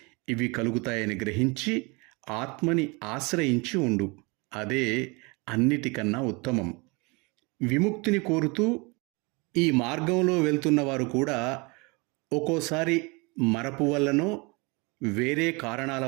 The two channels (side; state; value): left; quieter; 28.0 dB